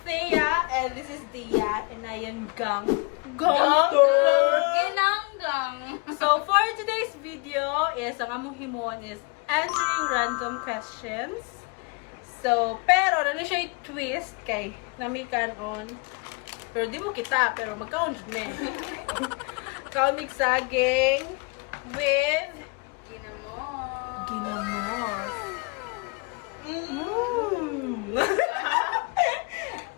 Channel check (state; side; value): quieter; right; 31.8 dB